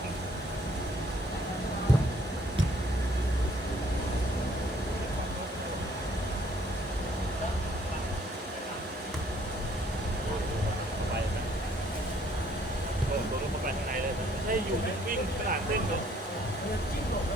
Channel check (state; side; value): normal; both; correlation 0.63